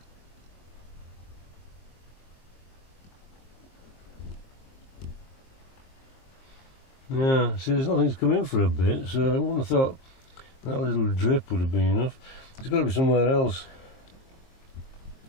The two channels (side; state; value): right; late; 23 ms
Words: Yeah, see, there's nothing's come in for a bit, so I wouldn't have thought that little drip would have been enough. It's got to be somewhere else.